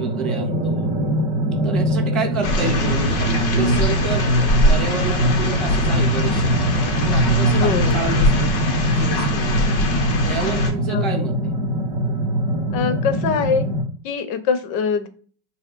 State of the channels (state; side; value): late; right; 5.3 ms